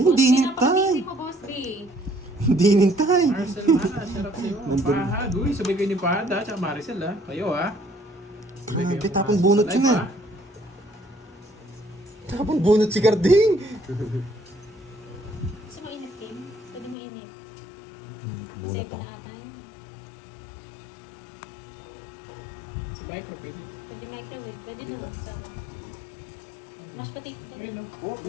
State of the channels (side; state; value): right; drops out; at 16.9 s